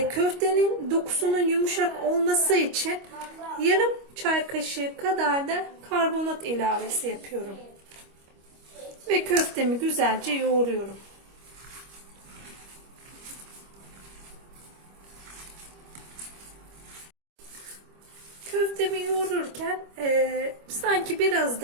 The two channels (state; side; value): late; left; 25 ms